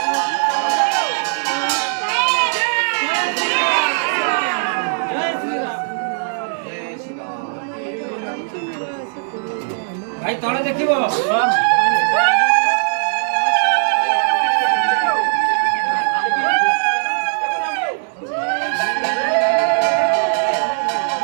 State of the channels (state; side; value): silent; left; digital silence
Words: भाई तले देखिबो